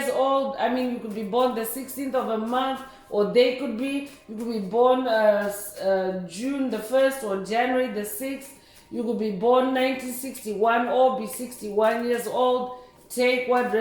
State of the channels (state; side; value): identical; both; correlation 1.00